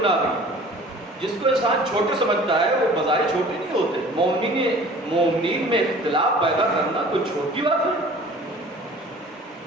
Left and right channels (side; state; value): both; normal; correlation 0.46